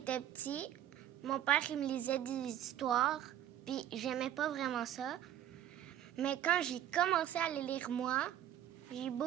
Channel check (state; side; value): quieter; left; 11.2 dB